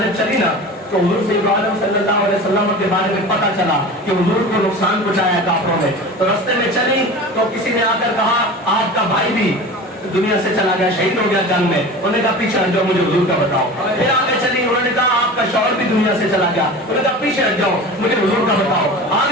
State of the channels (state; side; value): normal; both; correlation 0.34